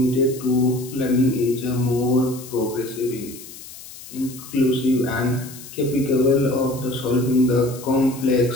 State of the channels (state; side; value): noise; left; hiss, 16 dB below the sound